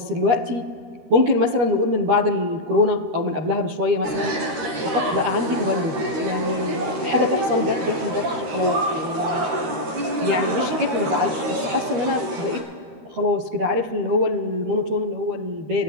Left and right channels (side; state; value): left; late; 13 ms